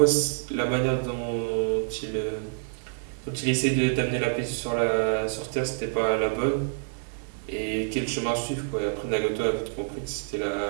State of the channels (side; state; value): left; silent; digital silence